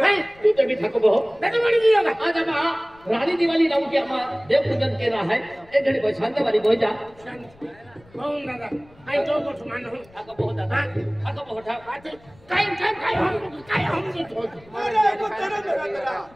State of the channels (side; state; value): left; noise; rumble, 27 dB below the sound